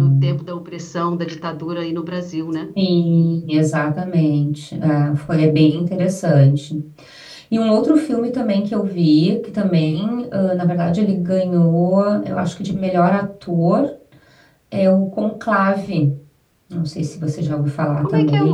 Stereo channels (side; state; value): both; identical; correlation 1.00